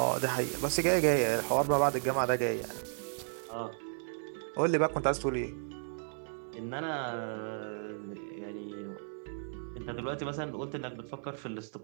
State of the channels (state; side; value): silent; left; digital silence